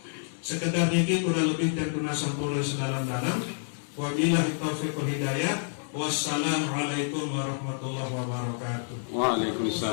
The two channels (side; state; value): right; silent; 59 dB below the other